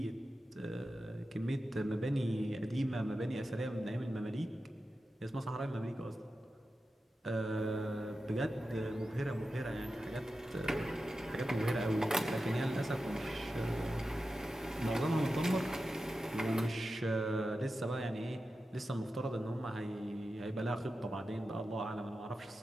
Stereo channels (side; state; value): both; normal; correlation 0.92